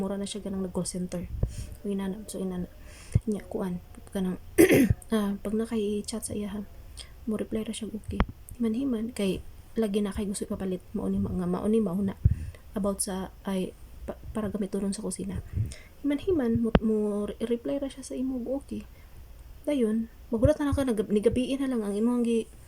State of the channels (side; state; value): both; identical; correlation 1.00